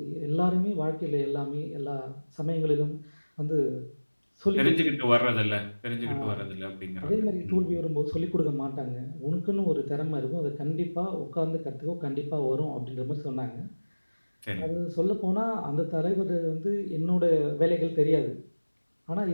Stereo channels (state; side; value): inverted; both; correlation -1.00